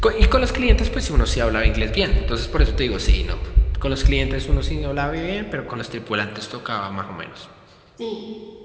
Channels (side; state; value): both; identical; correlation 1.00